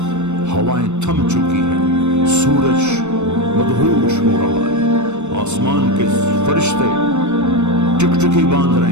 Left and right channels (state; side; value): late; left; 0.83 ms